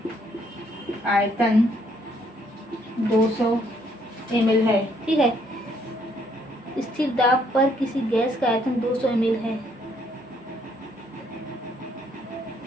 आयतन 200 ml है। ठीक है, स्थिर दाब पर किसी गैस का आयतन 200 ml है।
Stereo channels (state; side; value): normal; both; correlation 0.68